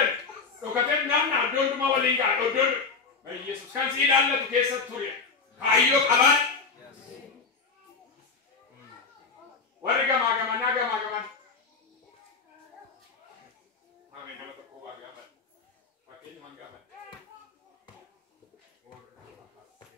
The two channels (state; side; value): quieter; right; 4.8 dB